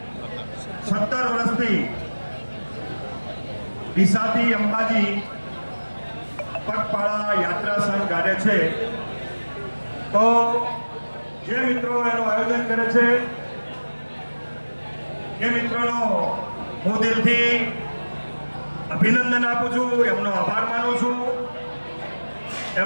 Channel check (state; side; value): inverted; both; correlation -1.00